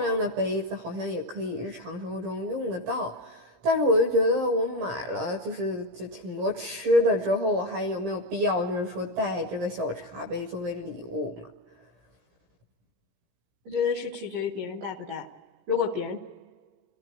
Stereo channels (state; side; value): late; left; 17 ms